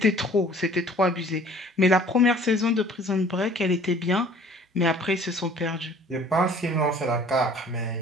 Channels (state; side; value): normal; both; correlation 0.52